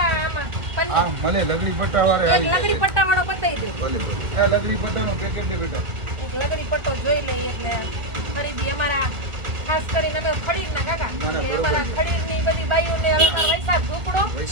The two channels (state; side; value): late; left; 1.4 ms